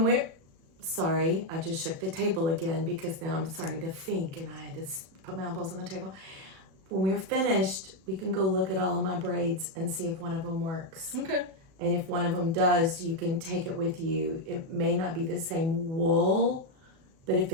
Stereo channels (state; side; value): late; left; 37 ms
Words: we're sorry, I just shook the table again because now I'm starting to think and I had to put my elbows on the table. When we're finished, we can go look at all of my braids and see if one of them works. Okay. And if one of them does, you can take it with you. It may not be the same wool, but if